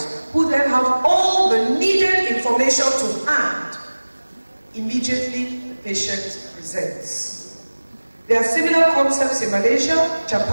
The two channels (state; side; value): inverted; both; correlation -1.00